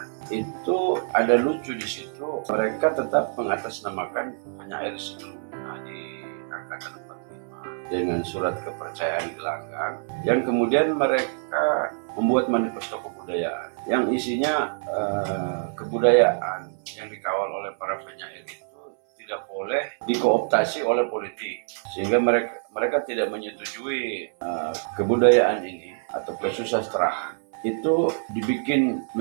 itu ada lucu di situ. Mereka tetap mengatasnamakan penyair sebelumnya di angkatan 45 dengan surat kepercayaan gelanggang, yang kemudian mereka membuat manifesto kebudayaan yang isinya kebudayaan yang dikawal oleh para penyair itu tidak boleh dikooptasi oleh politik, sehingga mereka tidak menyetujui kebudayaan ini atau kesusastraan itu dibikin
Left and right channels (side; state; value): left; silent; 61 dB below the other